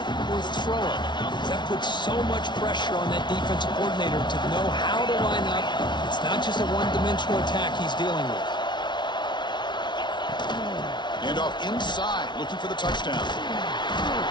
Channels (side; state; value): right; late; 0.22 ms